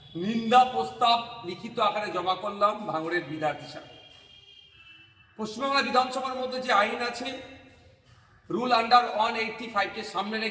নিন্দা প্রস্তাব লিখিত আকারে জমা করলাম ভাঙড়ের বিধায়ক হিসাবে। পশ্চিমবাংলা বিধানসভার মধ্যে যে আইন আছে, রুল আন্ডার 185কে সামনে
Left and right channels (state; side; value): identical; both; correlation 1.00